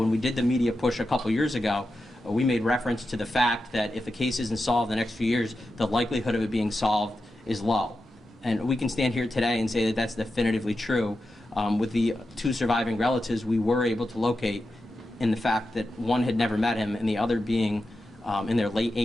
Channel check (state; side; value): normal; both; correlation 0.90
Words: we did the media push a couple years ago, we made reference to the fact that if the case isn't solved in the next few years, the likelihood of it being solved is low. And we can stand here today and say that that's definitively true. With the 2 surviving relatives, we were able to locate in the fact that one had never met him and the other being in their late